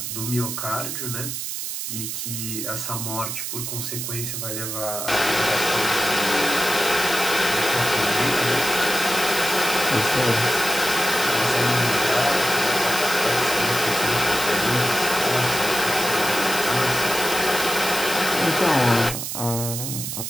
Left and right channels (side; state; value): right; noise; hiss, 5 dB below the sound